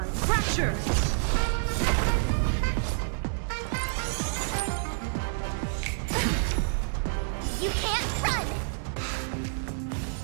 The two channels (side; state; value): left; silent; digital silence